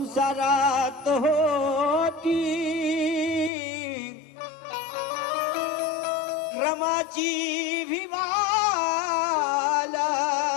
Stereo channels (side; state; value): right; drops out; at 3.5 s